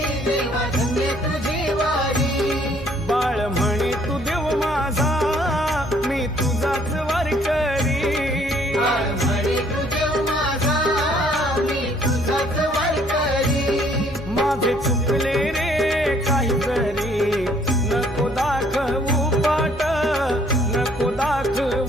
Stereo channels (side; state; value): right; noise; hum, 15 dB below the sound